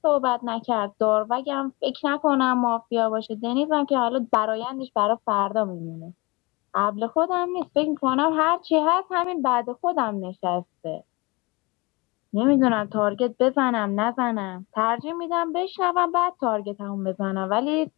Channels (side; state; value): right; quieter; 25.5 dB